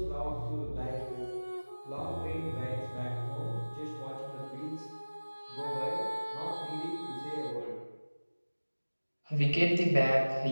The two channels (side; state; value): both; inverted; correlation -1.00